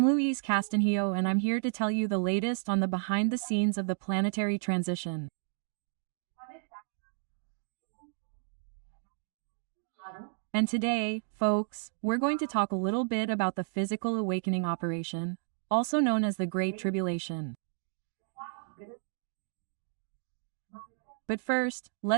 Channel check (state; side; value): silent; left; digital silence